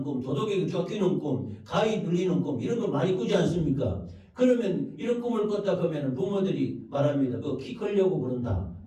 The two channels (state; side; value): identical; both; correlation 1.00